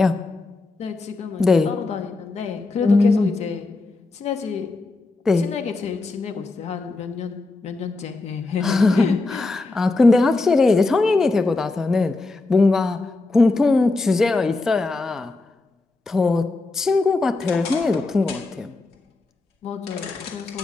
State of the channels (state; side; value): quieter; right; 3.3 dB